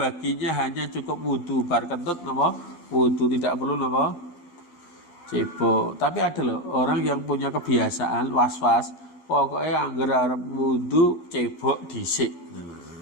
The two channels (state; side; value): late; right; 12 ms